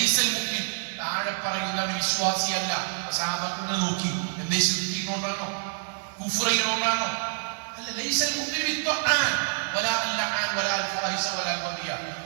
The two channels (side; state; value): left; silent; digital silence